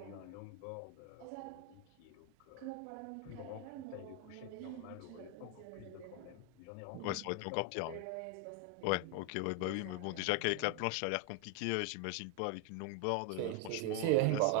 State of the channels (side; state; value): both; different; correlation 0.01